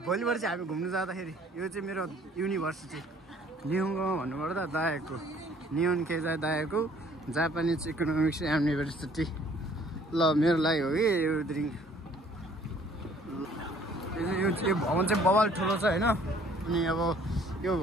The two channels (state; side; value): normal; both; correlation 0.58